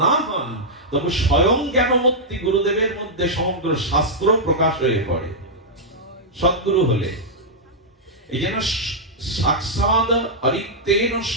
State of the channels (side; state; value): both; normal; correlation -0.08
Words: না হন, তবে স্বয়ং জ্ঞানমূর্তি গুরুদেবের মধ্যে সমগ্র শাস্ত্র প্রকাশ হয়ে পড়ে সদ্গুরু হলে। এই জন্য সাক্ষাৎ অরিক্তেন